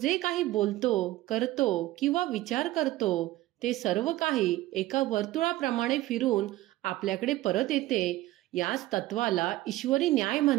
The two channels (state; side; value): quieter; left; 16.7 dB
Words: काही बोलतो, करतो किंवा विचार करतो ते सर्व काही एका वर्तुळाप्रमाणे फिरून आपल्याकडे परत येते. याच तत्वाला ईश्वरी न्याय